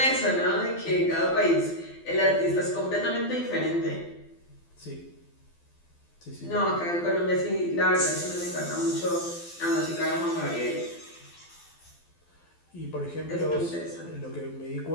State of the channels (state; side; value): late; right; 12 ms